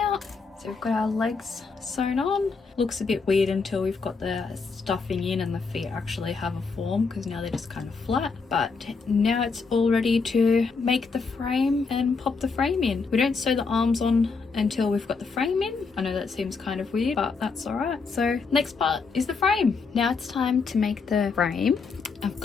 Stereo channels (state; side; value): quieter; right; 4.7 dB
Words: So we've got our legs sewn on. Looks a bit weird until we've got the stuffing in and the feet actually have a form, because now they're just kind of flat. But now it's all ready to make the frame and pop the frame in. We don't sew the arms on until we've got the frame in. I know that seems kind of weird, but that's all right. So next part is the frame. Now it's time to make the frame. I've